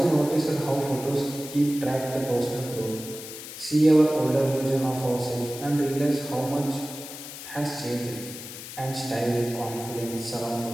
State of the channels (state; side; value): noise; left; hiss, 11 dB below the sound